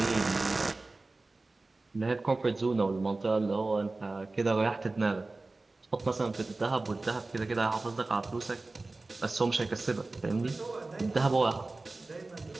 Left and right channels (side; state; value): left; quieter; 3.3 dB